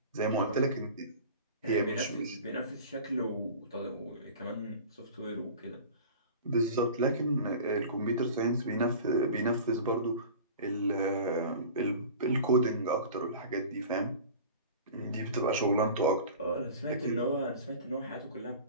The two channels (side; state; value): both; inverted; correlation -0.39